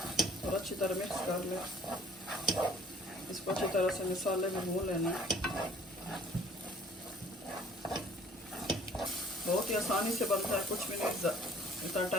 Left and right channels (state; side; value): normal; both; correlation 0.56